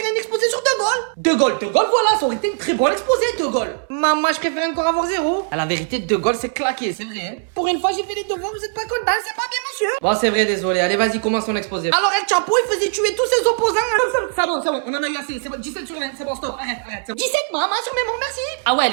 un exposé sur De Gaulle. De Gaulle, voilà, ça aurait été une très bonne exposé, De Gaulle. Maman, je préfère encore avoir 0. À la vérité, De Gaulle, c'est claqué, c'est vrai, hein. Pour une fois, j'ai fait les devoirs, vous êtes pas content, c'est pas bien, monsieur. Bon, c'est vrai, désolé. Allez, vas-y, commence ton exposé. Alors, El Chapeau, il faisait tuer tous ses opposants. C'est bon, on en a eu assez. C'est bon, 17 sur 20, c'est bon, stop, arrête, c'est bon. 17, maman, sur mémoire, merci. Ah ouais,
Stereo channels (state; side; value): silent; left; 66 dB below the other